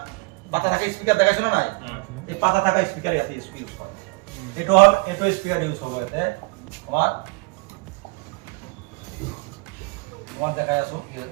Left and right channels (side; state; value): left; quieter; 28.6 dB